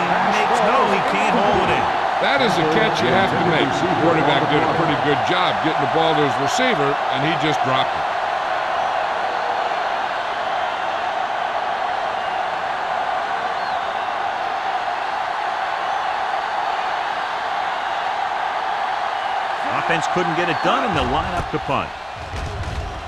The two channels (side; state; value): both; identical; correlation 1.00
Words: can't hold it in. That is a catch you have to make. The quarterback did a pretty good job getting the ball to his receiver, and he just dropped it. Offense couldn't get it done, and they'll line up to punt.